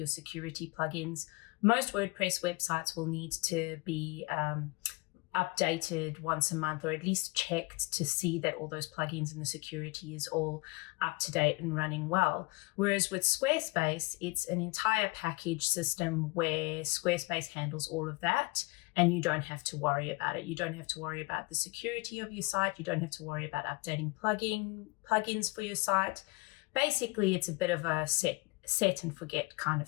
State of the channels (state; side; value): quieter; right; 25.5 dB